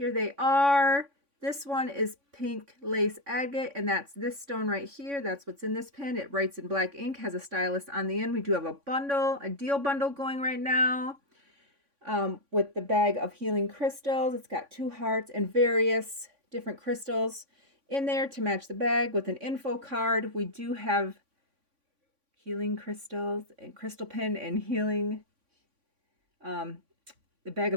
they are. This one is pink lace agate, and that's this stone right here. That's what's in this pen. It writes in black ink, has a stylus on the end. We do have a deal bundle going right now with the bag of healing crystals. It's got 2 hearts and various different crystals in there to match the bag with an info card. We do have healing crystals and crystal pen and healing the bag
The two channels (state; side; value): late; left; 3.5 ms